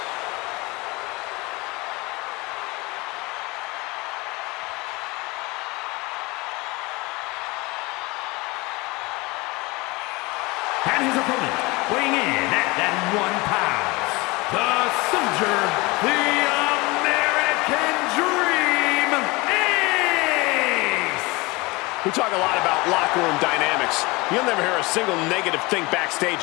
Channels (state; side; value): quieter; right; 24.0 dB